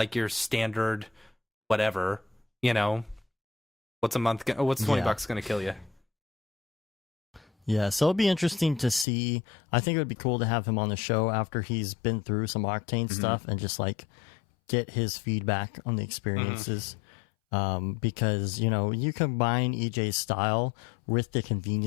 your standard whatever, you know, what's $20 going to kill you? Yeah, so it'll be interesting to see. I think it would be cool to have him on the show after he's been through some Octane stuff and just like get his feedback on the experiences. Because, you know, you combine EJ's style with the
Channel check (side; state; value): right; drops out; at 9.1 s